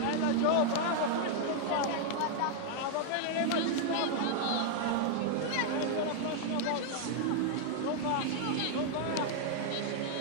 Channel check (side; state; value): both; different; correlation 0.00